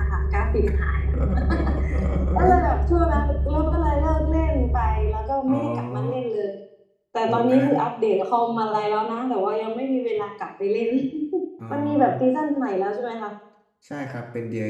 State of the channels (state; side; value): identical; both; correlation 1.00